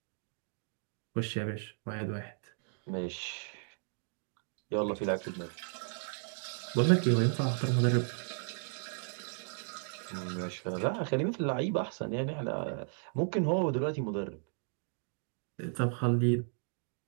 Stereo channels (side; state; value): left; silent; 55 dB below the other